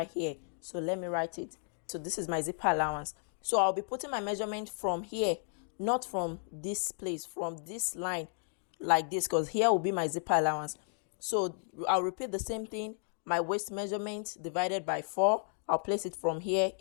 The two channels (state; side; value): silent; right; 55 dB below the other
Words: here. So let me write it. So this is my zipper allowance. So I'll be putting my measurement from here, not from this place, from this line like this, because here will be my zipper allowance. So I'll repeat the same thing. My waist measurement divided by 4. I'll place it from here